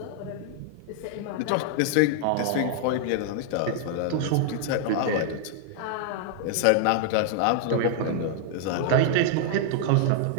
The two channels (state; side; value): different; both; correlation -0.01